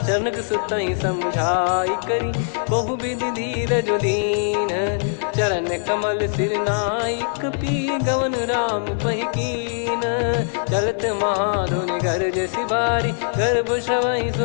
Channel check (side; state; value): right; silent; digital silence